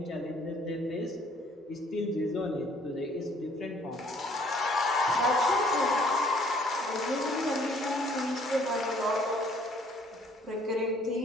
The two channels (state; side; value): normal; both; correlation 0.60